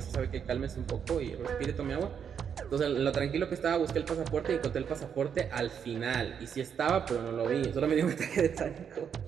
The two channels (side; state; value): left; quieter; 7.6 dB